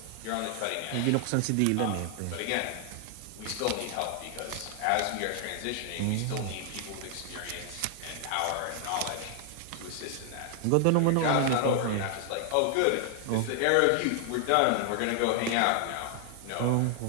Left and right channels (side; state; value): both; different; correlation 0.00